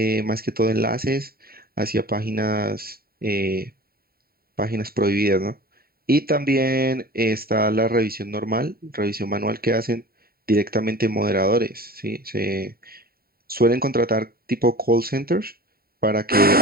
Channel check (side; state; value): left; late; 0.44 ms